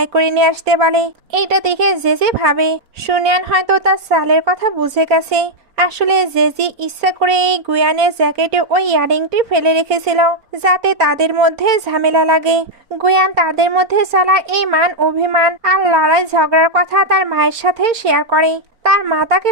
করে নিয়ে আসতে বলে। এইটা দেখে জেজি ভাবে সুনিয়ান হয়তো তার সালের কথা বুঝে গেছে। আসলে জেজি ইচ্ছা করে এই গুয়ানের জ্যাকেটে ওই ইয়াররিংটি ফেলে রেখেছিল যাতে তাদের মধ্যে ঝামেলা লাগে। গুয়ান তাদের মধ্যে চলা এই মান অভিমান আর লড়াই ঝগড়ার কথা তার মায়ের সাথে শেয়ার করে। তার মা তাকে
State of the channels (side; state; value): left; late; 4.4 ms